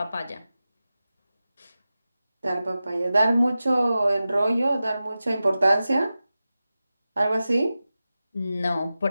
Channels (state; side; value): inverted; both; correlation -0.94